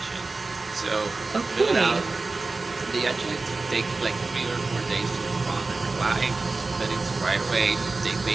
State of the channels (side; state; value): left; quieter; 3.6 dB